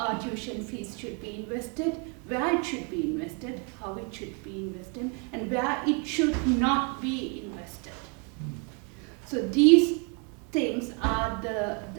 tuition fees should be invested, where it should be invested, how it should be invested, and where it should not be invested. So these things are the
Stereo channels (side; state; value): left; quieter; 33.8 dB